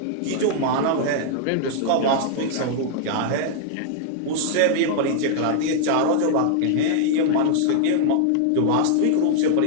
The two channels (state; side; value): different; both; correlation -0.01